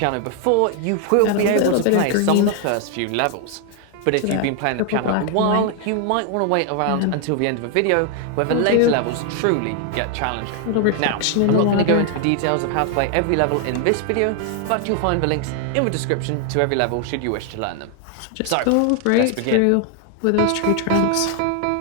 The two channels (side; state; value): both; different; correlation 0.00